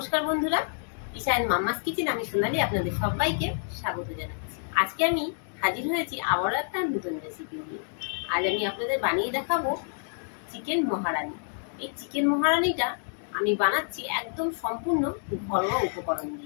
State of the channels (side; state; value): right; silent; digital silence